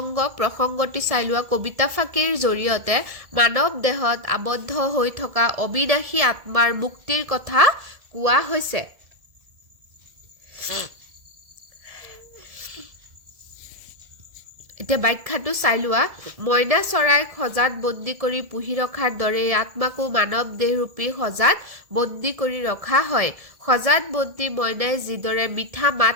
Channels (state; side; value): late; left; 1.7 ms